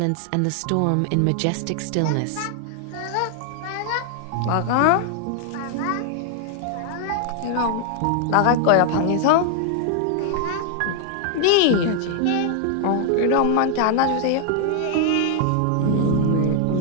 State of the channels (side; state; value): both; different; correlation 0.00